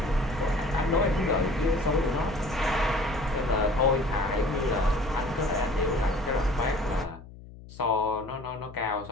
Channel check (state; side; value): noise; left; hum, 18 dB below the sound